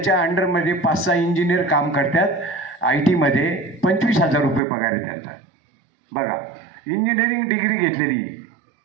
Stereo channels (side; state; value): left; drops out; at 4.6 s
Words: अंडरमध्ये 5-6 इंजिनियर काम करतात. IT मध्ये 25,000 रुपये पगार आहे त्यांचा. बघा, इंजिनिअरिंग डिग्री घेतलेली